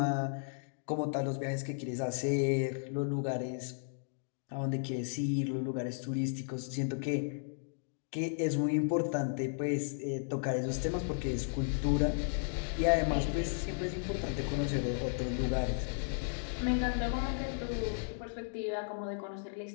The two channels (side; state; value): right; silent; digital silence